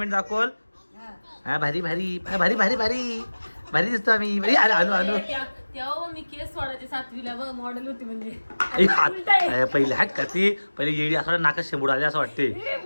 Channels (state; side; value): inverted; both; correlation -1.00